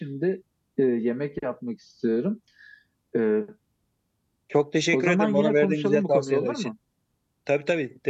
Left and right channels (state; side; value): identical; both; correlation 1.00